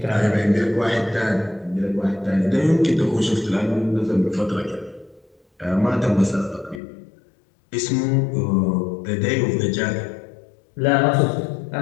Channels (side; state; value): right; drops out; at 6.8 s